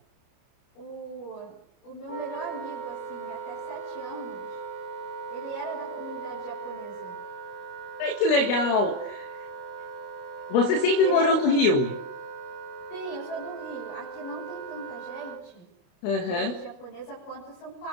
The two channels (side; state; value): right; late; 29 ms